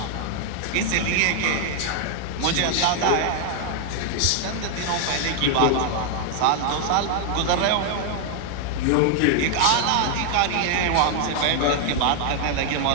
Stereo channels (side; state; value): both; different; correlation 0.00